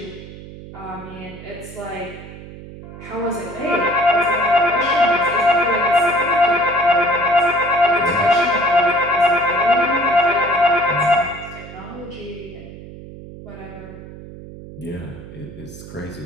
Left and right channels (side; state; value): right; noise; hum, 15 dB below the sound